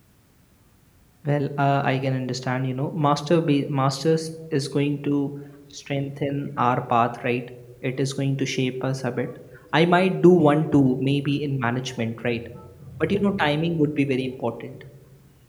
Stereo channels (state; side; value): identical; both; correlation 1.00